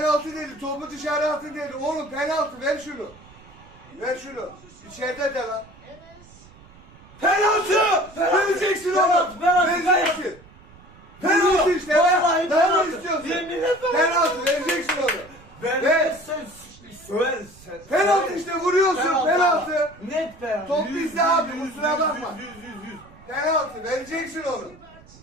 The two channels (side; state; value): right; noise; rumble, 23 dB below the sound